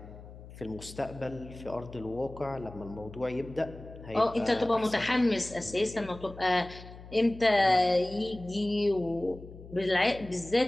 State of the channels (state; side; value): noise; left; hum, 16 dB below the sound